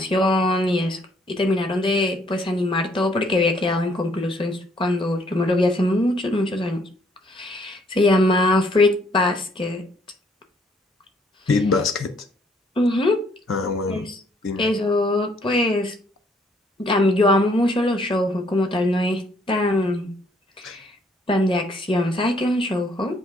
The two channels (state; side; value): normal; both; correlation 0.66